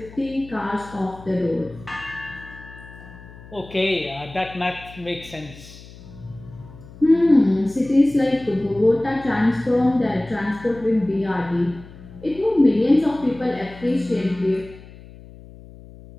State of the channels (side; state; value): left; noise; hum, 19 dB below the sound